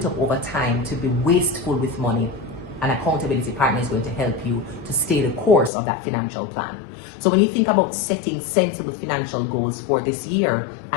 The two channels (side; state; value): right; drops out; at 5.7 s